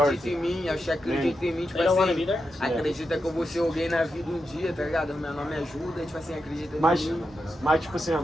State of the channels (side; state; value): both; normal; correlation 0.87